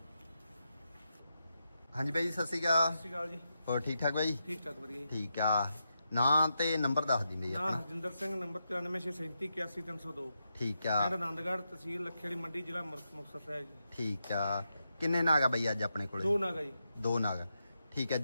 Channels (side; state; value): both; inverted; correlation -0.85